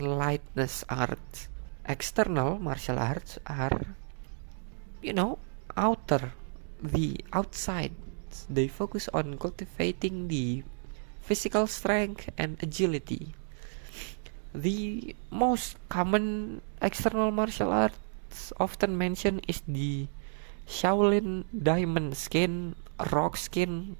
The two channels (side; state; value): left; silent; digital silence